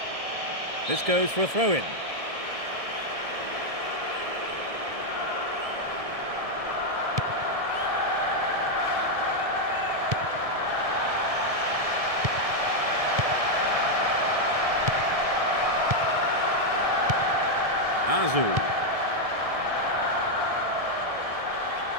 This goes for a throw-in. Azu.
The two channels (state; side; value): late; left; 1.6 ms